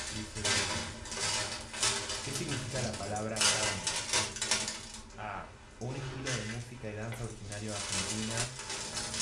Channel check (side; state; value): both; identical; correlation 1.00